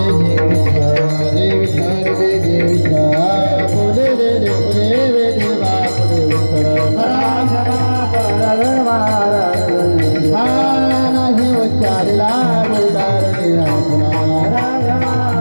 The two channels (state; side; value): inverted; both; correlation -1.00